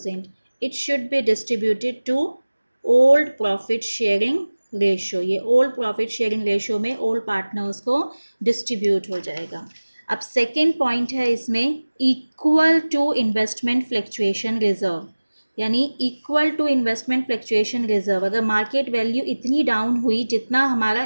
It should be distributed to old profit sharing ratio. ये ओल्ड प्रॉफिट शेयरिंग रेशो में ओल्ड पार्टनर्स को डिस्ट्रीब्यूट हो जाएगा। अब सेकेंड पॉइंट है इसमें equal to investment fluctuation reserve, यानी equal to investment fluctuation reserve. अगर मार्केट वैल्यू इतनी डाउन हुई जितना हमारा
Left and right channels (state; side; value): inverted; both; correlation -1.00